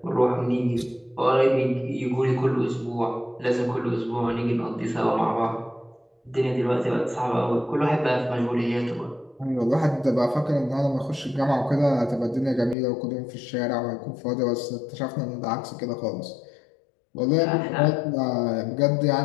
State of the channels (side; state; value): right; drops out; at 12.8 s